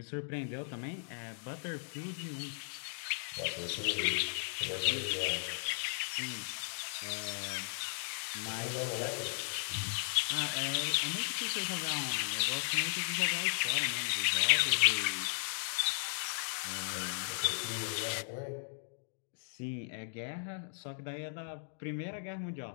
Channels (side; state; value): right; silent; digital silence